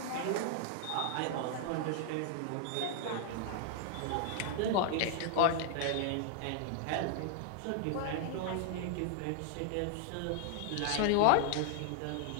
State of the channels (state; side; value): different; both; correlation 0.00